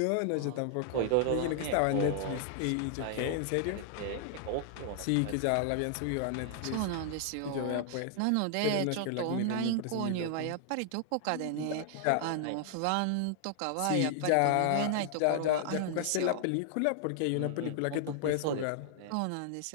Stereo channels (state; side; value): different; both; correlation 0.00